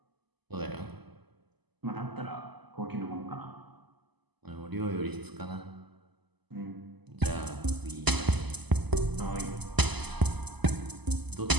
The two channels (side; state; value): left; late; 0.99 ms